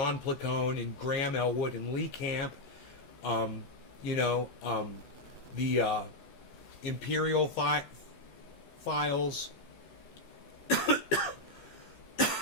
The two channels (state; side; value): late; right; 15 ms